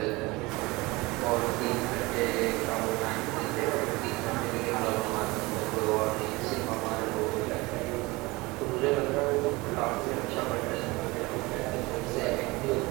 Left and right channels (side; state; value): left; quieter; 22.9 dB